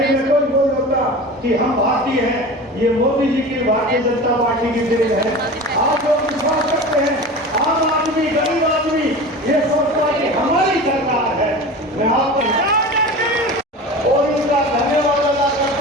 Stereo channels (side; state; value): both; normal; correlation 0.33